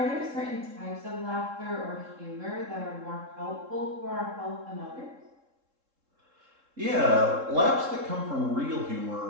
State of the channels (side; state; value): left; late; 3.7 ms